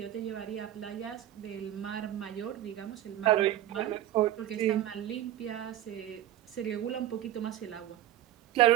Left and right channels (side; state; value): left; quieter; 12.9 dB